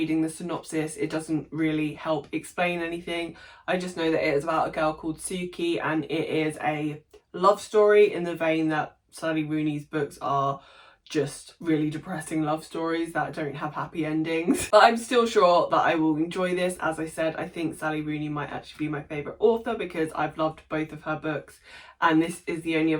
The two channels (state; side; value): identical; both; correlation 1.00